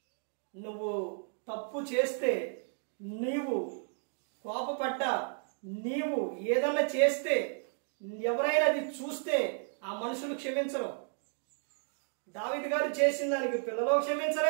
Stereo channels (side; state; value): left; silent; 56 dB below the other